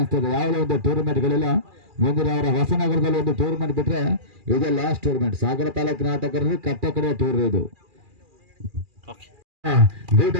ಯಾವುದೇ ಒಂದು ಟೂರ್ನಮೆಂಟ್ಗಳಿಲ್ಲ. ಮುಂದಿನ ಅವರ ಹೊಸನಗರದಲ್ಲಿ ಒಂದು ಟೂರ್ನಮೆಂಟ್ ಬಿಟ್ರೆ ಇದೇ ಲಾಸ್ಟ್ ಟೂರ್ನಮೆಂಟ್. ಸಾಗರ ತಾಲೂಕಿನ ಆಟಗಾರರು ಕಟ್ಟ ಕಡೆ ಟೂರ್ ಇದು.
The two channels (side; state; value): left; late; 2.4 ms